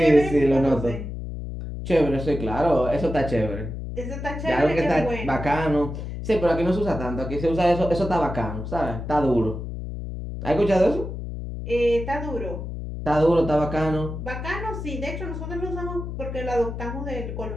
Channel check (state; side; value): noise; left; hum, 7 dB below the sound